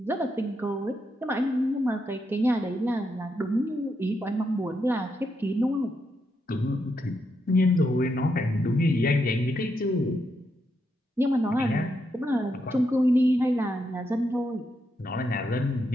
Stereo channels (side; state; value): both; normal; correlation 0.81